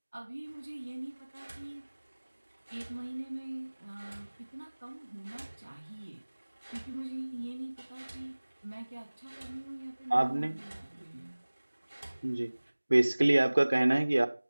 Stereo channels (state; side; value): inverted; both; correlation -1.00